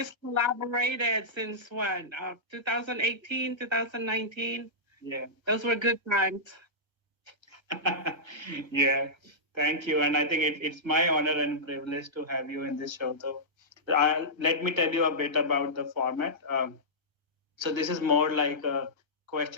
collaborated since when? 2018, 2019? Yeah. Those were good times. Yeah, thank you. And I think it's my honor and privilege to have you in this show. So let me tell you a bit about the format. So this is more like a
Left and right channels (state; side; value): late; left; 1.3 ms